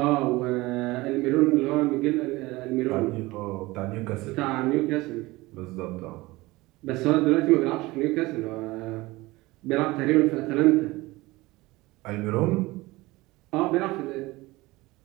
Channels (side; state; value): left; quieter; 20.6 dB